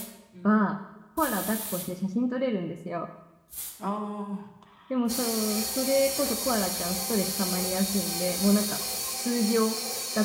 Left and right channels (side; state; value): both; identical; correlation 1.00